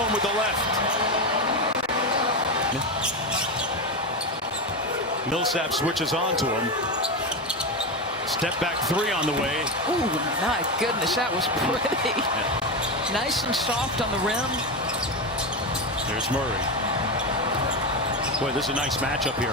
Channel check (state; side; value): normal; both; correlation 0.15